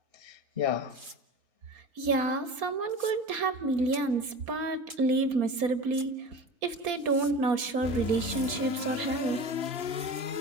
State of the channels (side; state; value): left; late; 4.3 ms